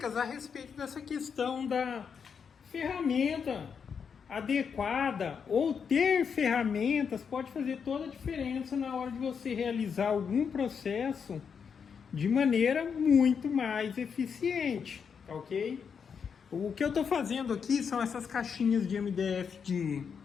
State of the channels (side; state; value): right; quieter; 6.6 dB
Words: a respeito dessa questão da ferramenta adequada ou ter ferramentas pode fazer toda a diferença na hora de você realizar algum processo de maneira muito mais eficiente, tá ok? O que eu estou fazendo aqui são essas caixinhas de MDF de